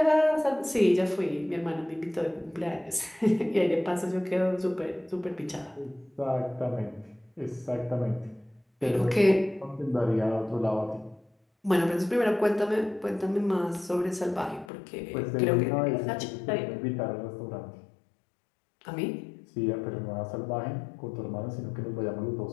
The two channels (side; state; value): right; drops out; at 14.7 s